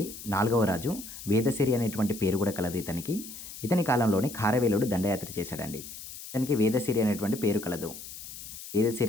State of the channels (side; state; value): left; noise; hiss, 12 dB below the sound